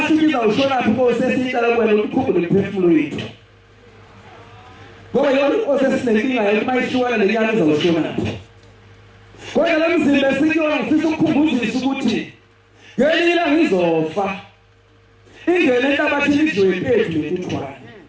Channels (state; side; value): identical; both; correlation 1.00